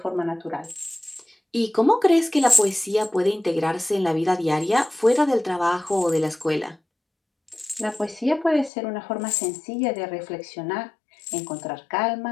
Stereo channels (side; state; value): right; drops out; at 8.7 s